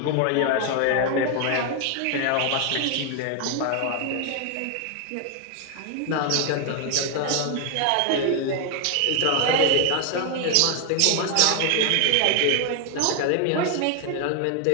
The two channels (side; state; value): both; different; correlation 0.00